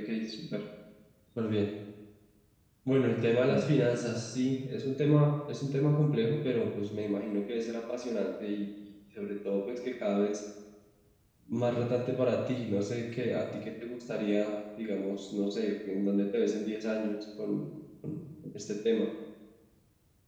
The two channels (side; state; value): both; identical; correlation 1.00